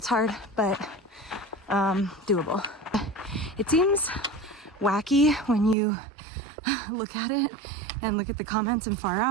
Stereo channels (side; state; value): left; drops out; at 5.8 s